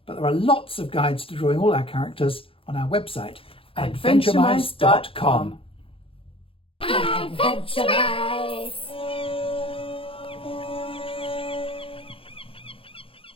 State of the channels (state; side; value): late; right; 0.27 ms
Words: But there are lots of guides to drawing all our characters on our website, adventuremice.com. Adventuremice.